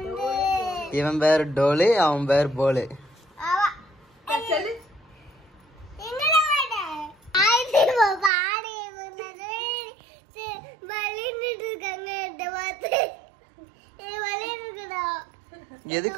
இவன் பேர் டோலு, அவன் பேர் போலு.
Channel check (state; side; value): drops out; left; at 8.3 s